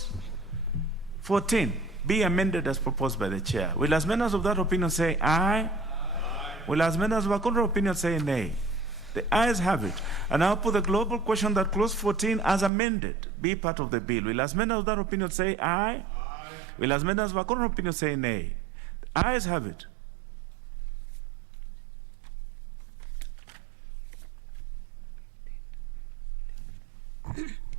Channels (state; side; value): drops out; left; at 12.7 s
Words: 14 be amended as proposed by the chair. Will as many as of that opinion say aye? Aye. Will as many as of a contrary opinion say nay? The ayes have it. And now put the global question that clause 14 as amended be part of the bill. Will as many of that opinion say aye? Aye. Will as many as of a contrary opinion say nay? The ayes have it.